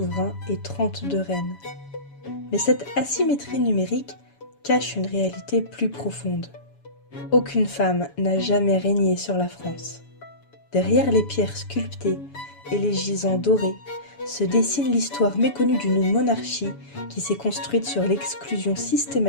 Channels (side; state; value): right; late; 7.1 ms